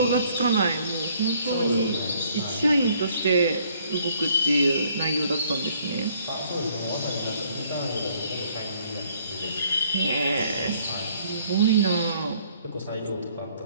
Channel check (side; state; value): both; inverted; correlation -0.63